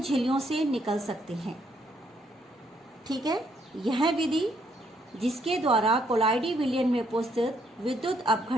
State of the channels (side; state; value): both; normal; correlation 0.71